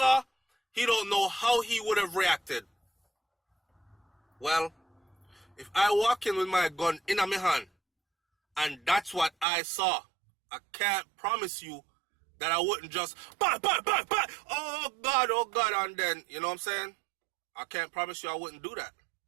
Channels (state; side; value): drops out; left; at 9.5 s